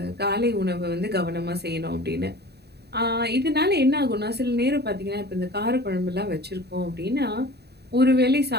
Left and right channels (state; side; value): late; left; 0.48 ms